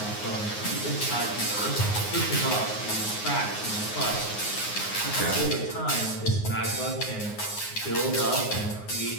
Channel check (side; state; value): right; late; 9.6 ms